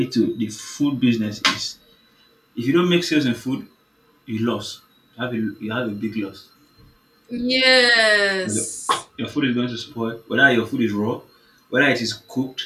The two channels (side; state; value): both; identical; correlation 1.00